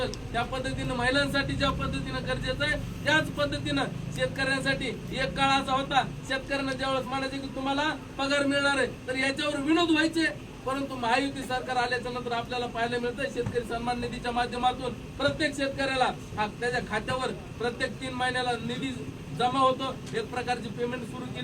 त्या पद्धतीने महिलांसाठी ज्या पद्धतीने गरजेचं आहे त्याच पद्धतीनं शेतकऱ्यांसाठी एक काळ असा होता, शेतकऱ्यांना ज्यावेळेस म्हणायचे की तुम्हाला पगार मिळणार आहे तर याच्यावर विनोद व्हायचे, परंतु महायुती सरकार आल्याच्या नंतर आपल्याला पाहायला मिळतं शेतकरी सन्मान निधीच्या माध्यमातून प्रत्येक शेतकऱ्याला त्याच्या खात्यावर प्रत्येक 3 महिन्याला निधी जमा होतो, एक प्रकारची पेमेंट सुरू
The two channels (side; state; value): both; identical; correlation 1.00